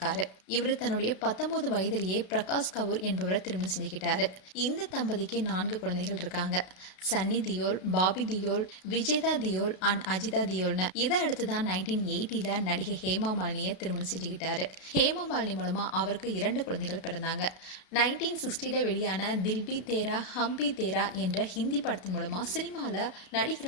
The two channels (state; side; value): late; right; 32 ms